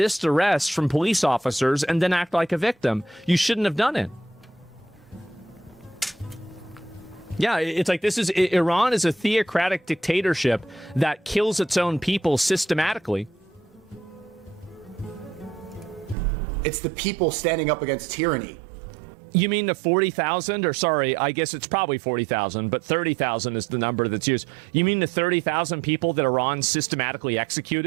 arrest from police officers and then act like a victim. You shouldn't have done it. Yeah, it's like Iran is a theocratic dictatorship that kills its own people systematically. It's the people standing up against tyranny. You mean the 40,000, or sorry, I guess it's probably 40,000, but 30,000 is the number that's used. You mean the 30,000 people that Iran systematically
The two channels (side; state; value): left; drops out; at 16.2 s